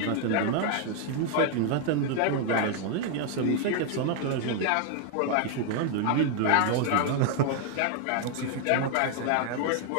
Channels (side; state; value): both; different; correlation 0.00